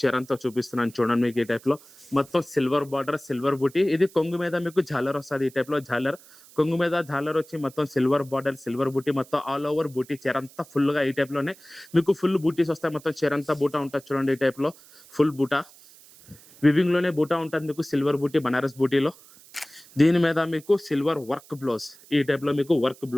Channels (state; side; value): noise; right; hiss, 23 dB below the sound